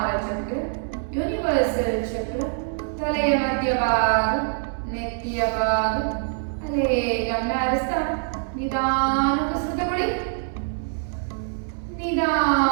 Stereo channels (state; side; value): silent; left; 59 dB below the other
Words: ಚಕ್ರ, ಯೂನಿವರ್ಸಲ್ ಚಕ್ರ, ತಲೆಯ ಮಧ್ಯಭಾಗ ನೆತ್ತಿಯ ಭಾಗ ಅಲ್ಲೇ ಗಮನ ಹರಿಸ್ತಾ ನಿಧಾನ ಉಸಿರು ತಗೊಳ್ಳಿ,